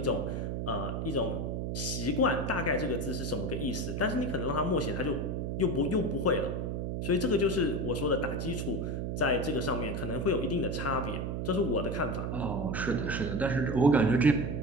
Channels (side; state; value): right; noise; hum, 2 dB below the sound